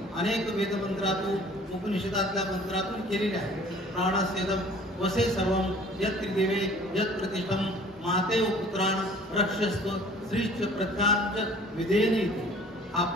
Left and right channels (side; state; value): both; normal; correlation 0.50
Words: अनेक वेदमंत्रातून उपनिषदातल्या मंत्रातून केलेली आहे. प्राणस्येदम वसे सर्वम यत् त्रिदेवे यत् प्रतिष्ठम मातेव पुत्रान रक्षस्व श्रीच प्रज्ञांच विधेयनी. हा